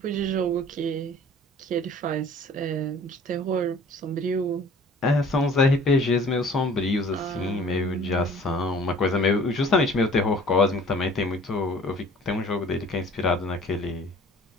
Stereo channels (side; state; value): both; normal; correlation 0.50